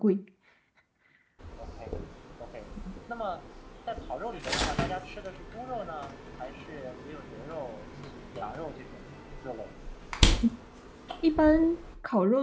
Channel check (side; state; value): both; identical; correlation 1.00